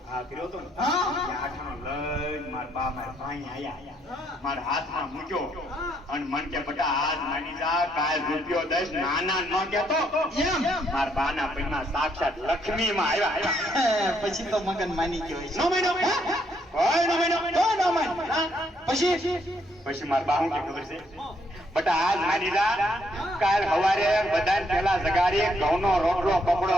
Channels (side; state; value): both; normal; correlation 0.72